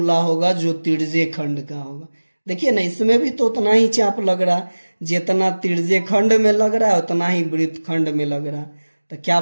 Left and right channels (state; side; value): inverted; both; correlation -1.00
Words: होगा जो तिर्यक खंड का होगा। देखिए ना, इसमें भी तो उतना ही चाप लग रहा है, जितना तिर्यक खंड में लग रहा है उतना ही वृत्तखंड में लग रहा है। तो क्या